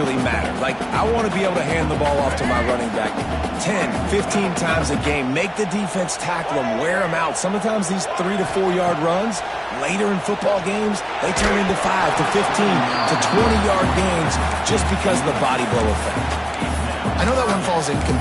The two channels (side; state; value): both; identical; correlation 1.00